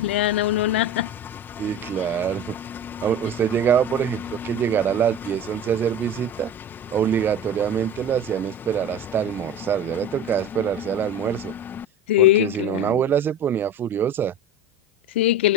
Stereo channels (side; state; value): both; normal; correlation 0.32